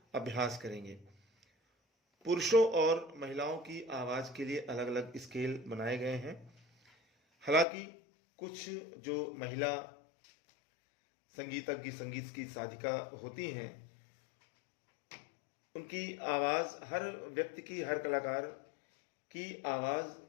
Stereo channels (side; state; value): right; drops out; at 7.7 s